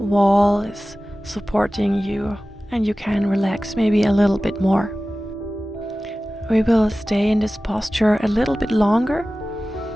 is supporting you and you can relax maybe a little bit more. We will stay in this posture a little bit longer.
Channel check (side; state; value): both; normal; correlation 0.96